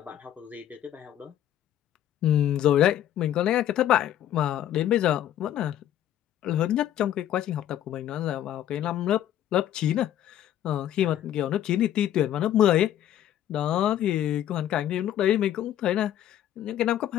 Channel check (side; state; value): right; quieter; 11.5 dB